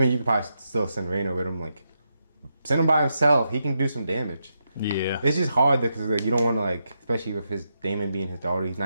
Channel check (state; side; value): inverted; both; correlation -0.84